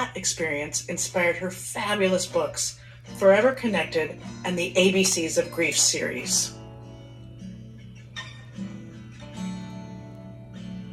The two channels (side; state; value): both; identical; correlation 1.00